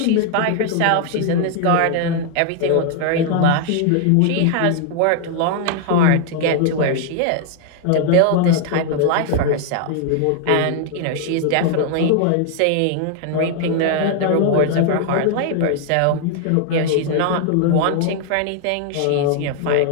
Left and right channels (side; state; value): both; different; correlation 0.00